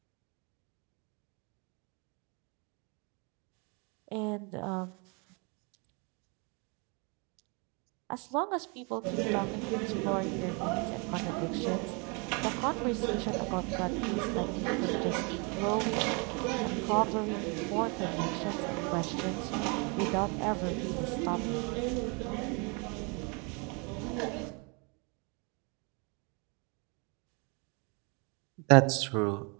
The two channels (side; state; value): left; quieter; 32.4 dB